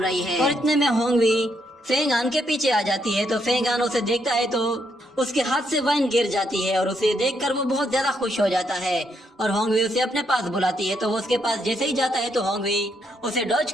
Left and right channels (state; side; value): normal; both; correlation 0.76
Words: है और इतने में होंगवी फेंग हान के पीछे आ जाती है। तो फेंग हान उसे देखता है तो उसके हाथ से वाइन गिर जाती है और उसे देखकर वो बहुत ज्यादा खुश हो जाता है और होंगवी उसे अपने पास बुलाती है। तो वो उसके पास जैसे ही जाता है तो होंगवी उसे डॉज